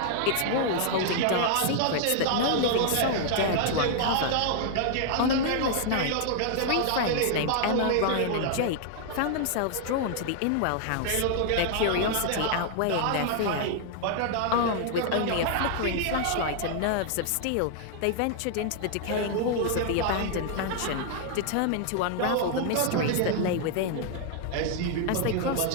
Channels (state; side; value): different; both; correlation 0.00